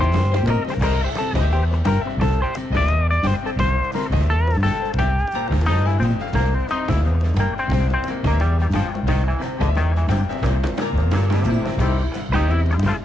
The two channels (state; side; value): normal; both; correlation 0.85